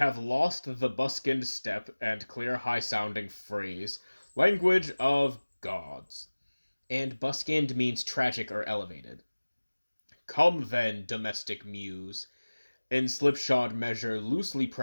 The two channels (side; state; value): both; inverted; correlation -1.00